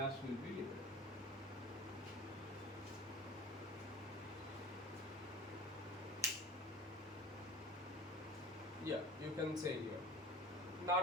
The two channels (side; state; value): both; normal; correlation 0.38